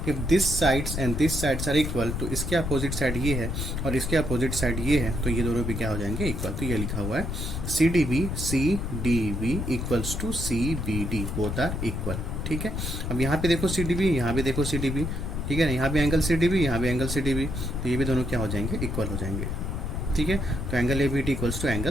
if this sides and this sides are equal, तो इसके अपोजिट साइड ये है और इसके अपोजिट साइड ये है, तो ये दोनों भी क्या हो जाएंगे, इक्वल। तो ये लिखा हुआ है CDB equals to CBD, both are equal, ठीक है। अब यहाँ पे देखो CDB, यहाँ भी देखो CDB, ठीक है ना, यहाँ भी एंगल CDB, यहाँ भी एंगल CDB, तो ये भी दोनों क्या हो जाएंगे, इक्वल हो जाएंगे, ठीक है। तो angle ABD equals to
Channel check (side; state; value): left; noise; rumble, 3 dB below the sound